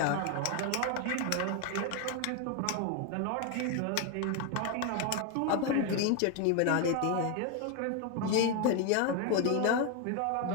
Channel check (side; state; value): both; different; correlation 0.01